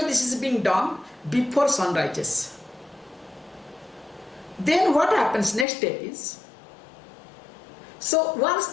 this is being done before sun rises. Then what happens next step is, so once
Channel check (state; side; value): drops out; right; at 5.7 s